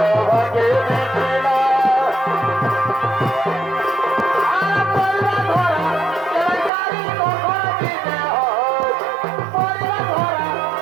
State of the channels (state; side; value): drops out; left; at 6.7 s